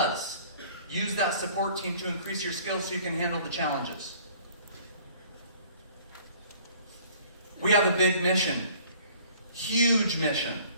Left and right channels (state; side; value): inverted; both; correlation -0.53